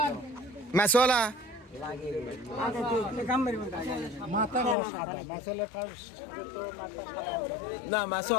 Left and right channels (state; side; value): drops out; right; at 4.8 s